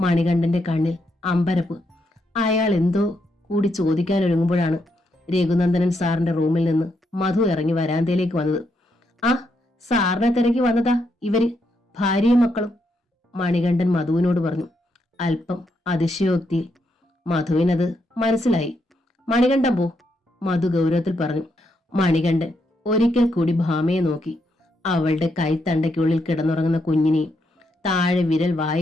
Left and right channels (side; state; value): both; normal; correlation 0.79